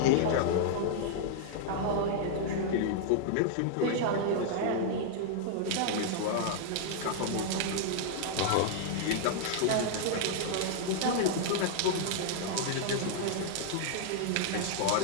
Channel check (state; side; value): different; both; correlation -0.01